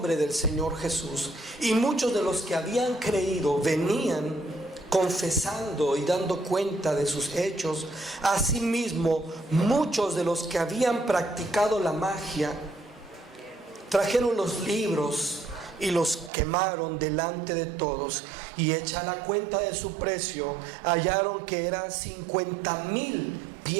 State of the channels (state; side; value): drops out; left; at 16.3 s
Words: del Señor Jesús. Y muchos de los que habían creído venían confesando y dando cuenta de sus hechos. Asimismo, muchos de los que habían practicado la magia trajeron los libros y los quemaron delante de todos, y hecha la cuenta de su precio, hallaron que eran 50,000